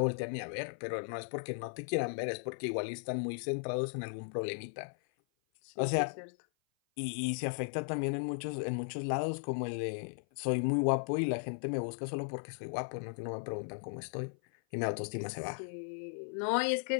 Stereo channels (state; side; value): silent; right; 54 dB below the other